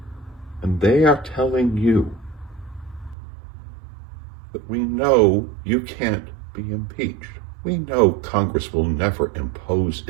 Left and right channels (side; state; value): left; drops out; at 3.2 s